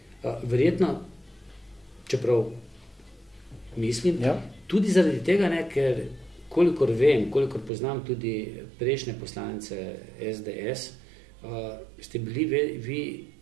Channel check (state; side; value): drops out; left; at 7.7 s